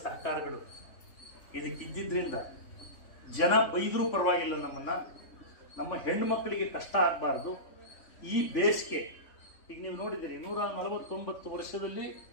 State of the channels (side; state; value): right; late; 3.5 ms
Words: ಸಹಕಾರಗಳು ಇದಕ್ಕೆ ಇದ್ದಿದ್ದರಿಂದ ಜನ ಬೈದರೂ ಪರವಾಗಿಲ್ಲ, ನಮ್ಮನ್ನು, ನಮ್ಮ ಹೆಣ್ಣುಮಕ್ಕಳಿಗೆ ಕಷ್ಟ ಆಗಬಾರ್ದು. ಈ ಬೇಸಿಗೆ ಈಗ ನೀವು ನೋಡಿದ್ದೀರಿ, 149 ವರ್ಷದಲ್ಲಿ